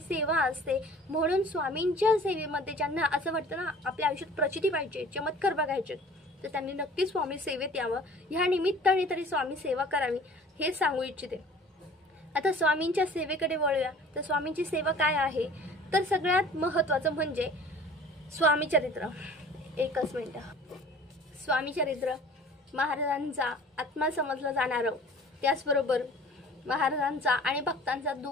असते। म्हणून स्वामींच्या सेवेमध्ये ज्यांना असं वाटतं ना आपल्या आयुष्यात प्रचिती पाहिजे, चमत्कार बघायचे, तर त्यांनी नक्कीच स्वामी सेवेत यावं। ह्या निमित्ताने तरी स्वामी सेवा करावी हे सांगू इच्छिते। आता स्वामींच्या सेवेकडे वळूया। तर स्वामींची सेवा काय आहे? तर सगळ्यात महत्त्वाचं म्हणजे स्वामी चरित्र। एकच मिनिट। स्वामी चरित्र महाराजांचा आत्मा समजला जाणारं, त्याचबरोबर महाराजांचा आणि भक्तांचा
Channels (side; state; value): both; normal; correlation 0.47